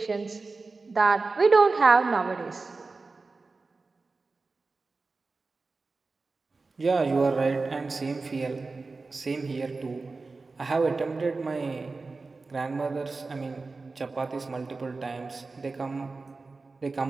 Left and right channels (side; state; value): left; quieter; 3.9 dB